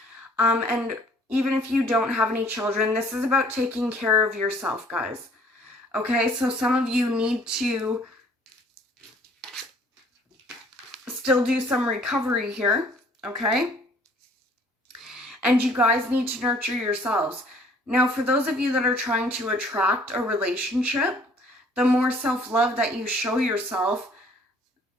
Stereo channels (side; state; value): both; normal; correlation 0.57